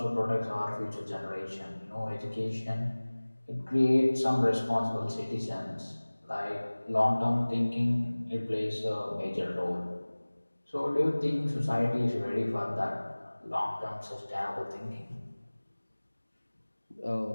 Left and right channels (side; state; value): both; inverted; correlation -1.00